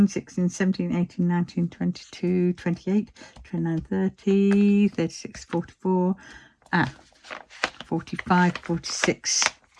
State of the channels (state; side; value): identical; both; correlation 1.00